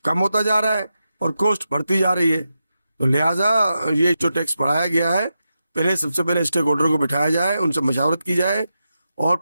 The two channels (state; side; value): inverted; both; correlation -0.89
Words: کم ہوتا جا رہا ہے اور کوسٹ بڑھتی جا رہی ہے. تو لہٰذا یہ جو ٹیکس بڑھایا گیا ہے، سب سے پہلے اسٹیک ہولڈر کو بٹھایا جائے، ان سے مشاورت کی جائے اور